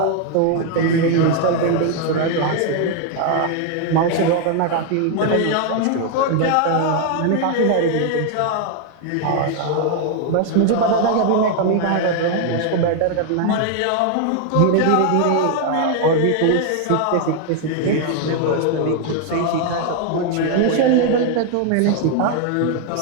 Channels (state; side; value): different; both; correlation 0.00